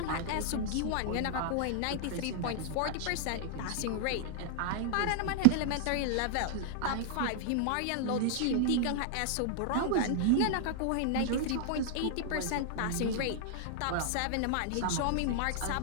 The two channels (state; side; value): different; both; correlation -0.01